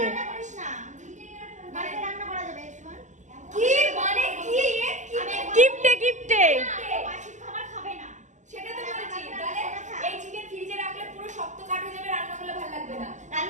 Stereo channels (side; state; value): left; late; 0.35 ms